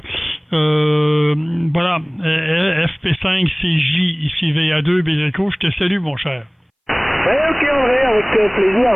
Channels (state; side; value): identical; both; correlation 1.00